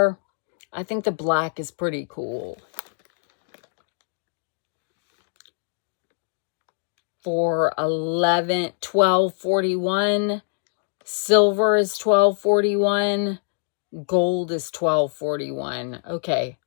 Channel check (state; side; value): silent; right; digital silence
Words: I think the black is pretty cool. For $12.41. Silver is $12.41. Gold is $12.41. Okay.